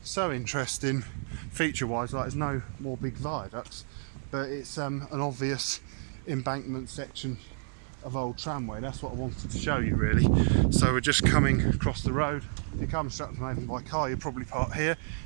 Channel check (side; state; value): left; silent; 58 dB below the other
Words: so interesting feature wise, like there's no more big viaducts, but it's an obvious embankment section of old tramway. That's what I wanted to show you really. So we're just coming across the road. If you come Stratford-upon-Avon by car, you'll probably park here.